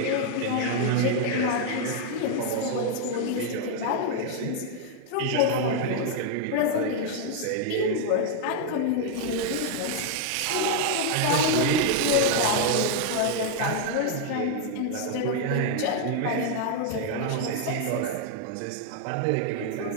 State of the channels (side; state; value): both; different; correlation 0.00